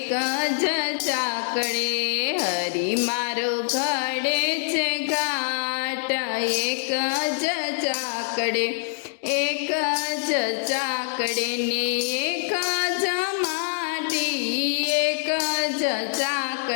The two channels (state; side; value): silent; right; digital silence